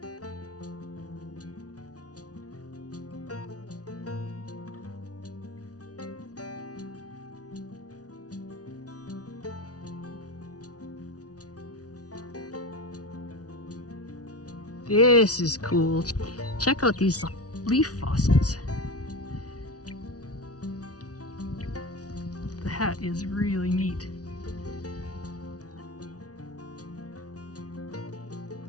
This is cool. Check out these leaf fossils. That is really neat.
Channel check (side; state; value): right; late; 0.68 ms